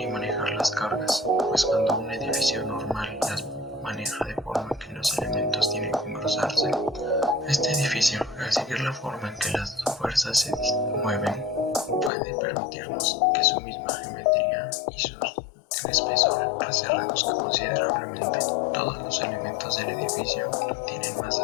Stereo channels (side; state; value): right; drops out; at 12.1 s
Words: y manejar las cargas, pues cuando un edificio normal las maneja de forma que los elementos tienen que engrosarse, este edificio, al seguir la forma en que las fuerzas se mueven, puede permitirnos que su misma geometría y su espesor se reduzca considerablemente. Todos los elementos del edificio tienen más